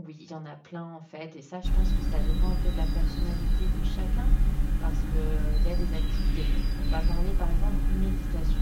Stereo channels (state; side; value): identical; both; correlation 1.00